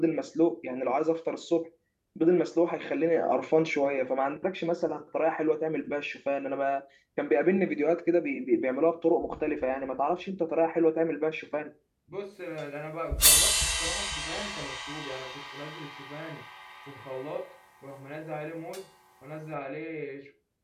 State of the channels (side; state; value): both; identical; correlation 1.00